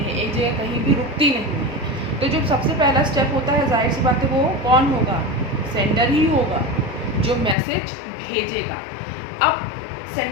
एक जगह कहीं भी रुकती नहीं है। तो जो सबसे पहला स्टेप होता है, जाहिर सी बात है वो कौन होगा, सेंडर ही होगा जो मैसेज भेजेगा। अब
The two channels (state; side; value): drops out; right; at 7.6 s